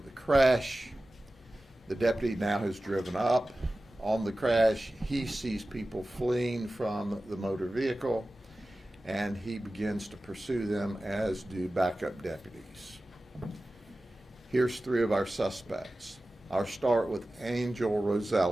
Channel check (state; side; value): normal; both; correlation 0.95